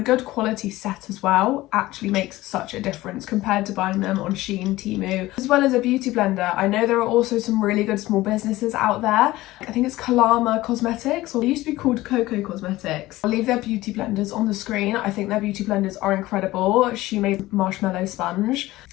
good quality set as well actually makes such a difference compared to buying them on Shein, Temu. As well as a beauty blender, I know there are also some really good small businesses out there. I think it's KAIIA Cosmetics, or it used to be called Coco Cosmetics. I'll leave their beauty blenders on the screen. I think their beauty blenders are incredible. She made marshmallow sponge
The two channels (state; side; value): quieter; right; 17.7 dB